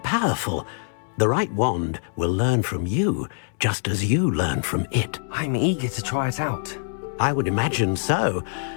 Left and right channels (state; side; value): silent; right; digital silence